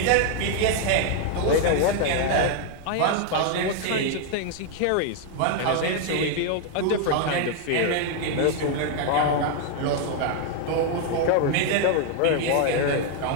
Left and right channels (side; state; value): both; different; correlation 0.00